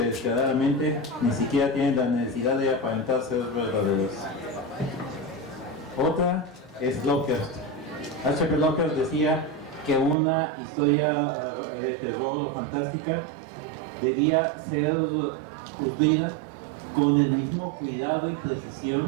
descaradamente ni siquiera tienen la necesidad de aparentar ser verdaderos. Otra es Lovecraft. H.P. Lovecraft decía que una historia de terror o fantástica debía ser construida con el mismo cuidado y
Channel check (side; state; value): left; drops out; at 10.2 s